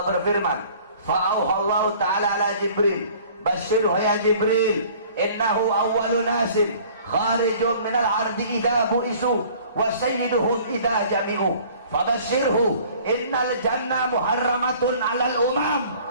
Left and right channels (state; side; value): inverted; both; correlation -0.51